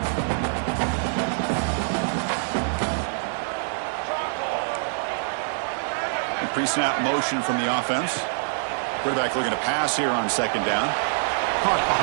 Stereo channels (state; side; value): silent; left; 62 dB below the other